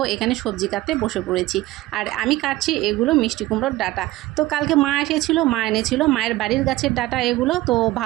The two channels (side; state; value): left; quieter; 17.3 dB